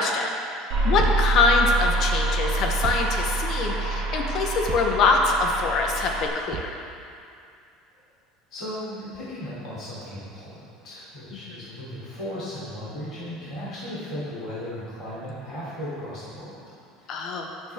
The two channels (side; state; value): both; normal; correlation 0.49